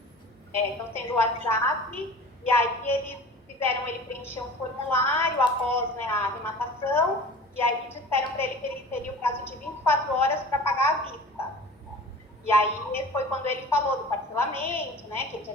sendo WhatsApp, e aí eles fizeram ele preencher um formulário após, né, a arrematação, e aí disseram para ele que ele teria o prazo de 24 horas para pagar à vista. E aí foi quando ele falou do parcelamento, né, que ele já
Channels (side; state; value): both; normal; correlation 0.40